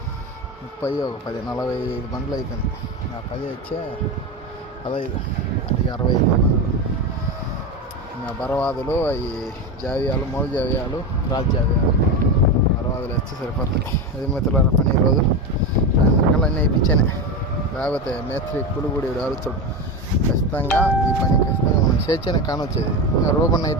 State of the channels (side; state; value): both; normal; correlation 0.19